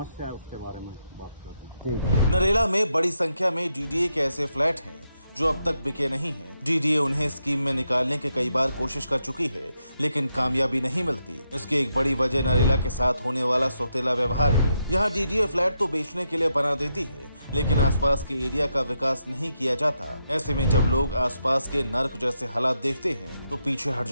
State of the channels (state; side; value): inverted; both; correlation -0.82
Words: है उसके बारे में बात करते हैं। ठीक है। नरेला में बड़ी संख्या में डीडीए के ऐसे फ्लैट हैं जो अब तक बिके नहीं हैं। डीडीए उन्हें स्कीम में निकालने की कई बार कोशिश कर चुकी है, लेकिन कामयाबी नहीं मिलती। इसकी एक बड़ी वजह नरेला के साथ होने वाला सौतेला व्यवहार है। यहाँ डीडीए फ्लैट तो बेचने के लिए बना देती है, लेकिन आसपास के एरिया का विकास नहीं किया जाता। ऐसे में जब लोग आसपास के नर्क जैसे हालात देखते हैं तो पीछे हट